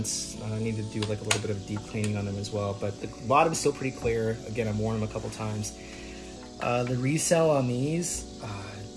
I need to do like a little bit of deep cleaning on them as well. But the bottom's still pretty clear. Again, I've worn them a couple times. The resale on these,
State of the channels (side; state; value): both; identical; correlation 1.00